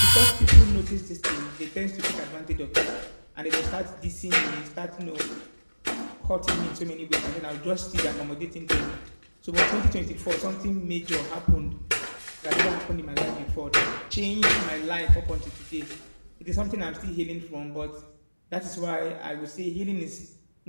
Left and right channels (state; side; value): inverted; both; correlation -1.00